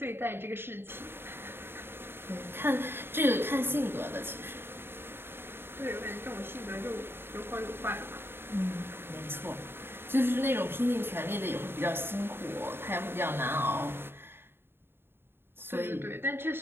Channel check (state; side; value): late; left; 0.11 ms